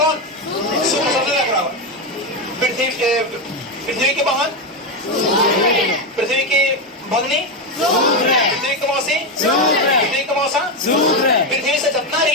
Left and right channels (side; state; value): both; normal; correlation 0.10